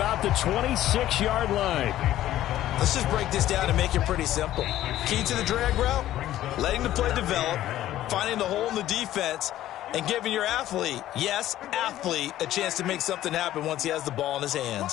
the 26-yard line. Let's just break this down and make it pretty simple. Key to the drag route, letting the play develop, finding the hole in the defense, and giving your athlete, yes, athlete, a chance to make something happen once he has the ball in his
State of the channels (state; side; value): quieter; right; 13.5 dB